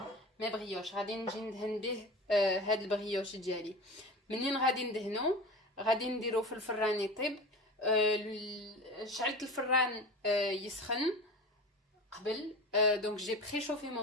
brioches. غادي نجي ندهن به هاد البريوش ديالي. منين غادي ندهنو غادي نديرو في الفران يطيب. شعلت الفران يسخن قبل. Donc j'ai préchauffé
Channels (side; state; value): both; normal; correlation 0.32